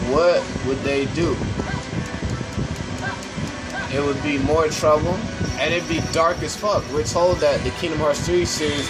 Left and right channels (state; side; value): identical; both; correlation 1.00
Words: what would they do? It would be more trouble, and it'd be dark as fuck. We're told that the Kingdom Hearts 3 series